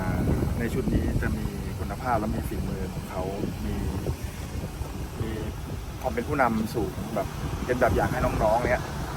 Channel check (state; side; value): identical; both; correlation 1.00